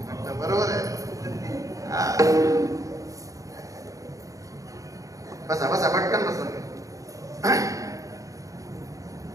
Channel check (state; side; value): late; left; 0.16 ms